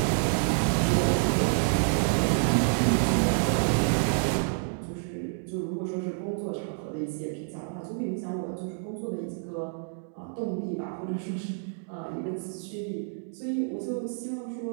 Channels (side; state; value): left; silent; digital silence